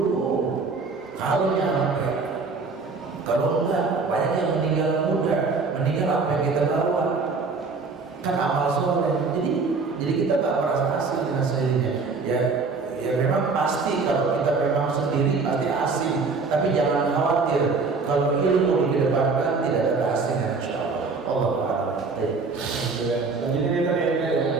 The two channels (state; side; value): quieter; left; 4.3 dB